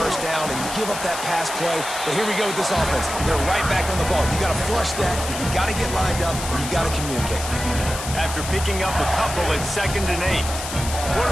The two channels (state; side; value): noise; left; hiss, 8 dB below the sound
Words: down and you give up that pass play. But here we go with this offense. They're right back on the ball. You got to flush that. You got to get lined up. You got to communicate. After picking up a couple at 2nd and 8.